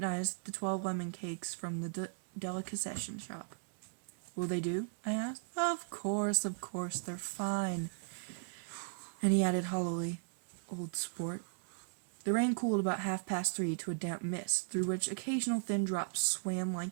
the 12 lemon cakes from the delicatessen shop. Will they do? I asked. Of course, they're fine. And he added hollowly, old sport. The rain cooled about 3:30 to a damp mist, through which occasional thin drops swam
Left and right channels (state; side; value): silent; left; digital silence